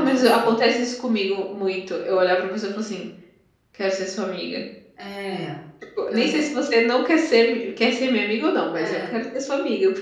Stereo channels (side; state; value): both; identical; correlation 1.00